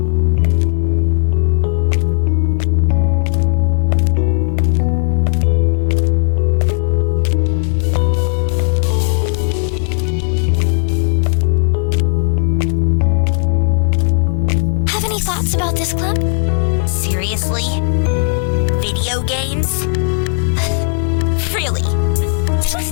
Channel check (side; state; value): right; silent; digital silence